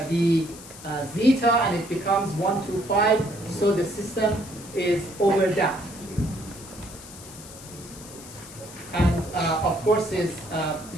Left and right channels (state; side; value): noise; left; hiss, 16 dB below the sound